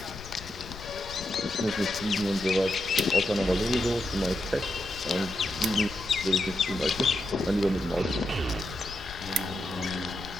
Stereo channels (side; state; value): left; noise; rumble, 14 dB below the sound